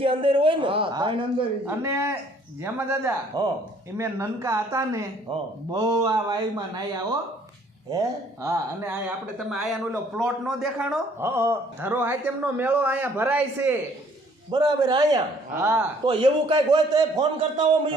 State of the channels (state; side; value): normal; both; correlation 0.60